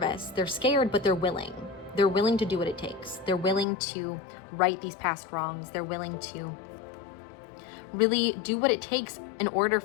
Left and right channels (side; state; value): right; drops out; at 3.7 s